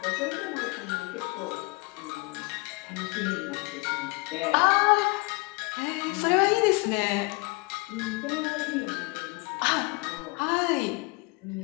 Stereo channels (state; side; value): quieter; right; 27.8 dB